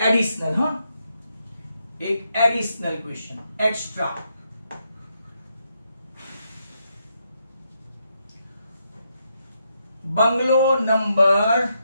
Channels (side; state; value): both; inverted; correlation -0.80